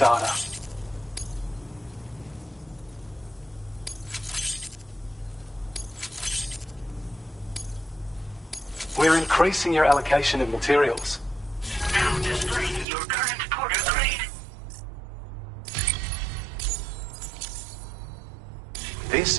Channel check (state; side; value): drops out; left; at 12.9 s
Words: We're increasing your allocation of materials. Now displaying your current porter grade. This